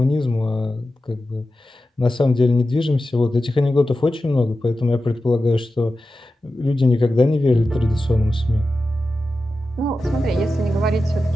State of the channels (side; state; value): both; normal; correlation 0.92